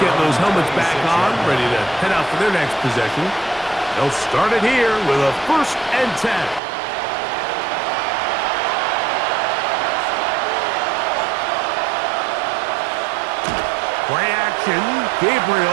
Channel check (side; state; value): left; drops out; at 6.6 s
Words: those helmets back on, ready to head out for their next possession. They'll start it here with a 1st and 10. Play action,